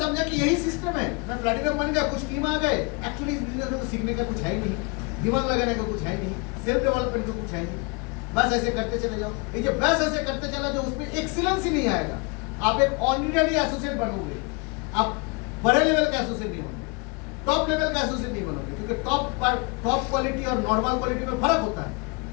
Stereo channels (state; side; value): quieter; right; 30.3 dB